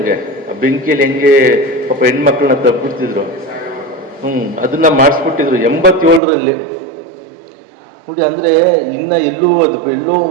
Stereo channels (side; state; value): left; drops out; at 6.2 s